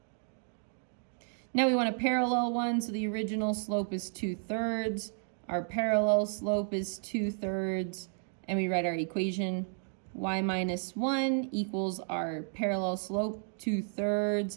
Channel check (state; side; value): silent; left; 56 dB below the other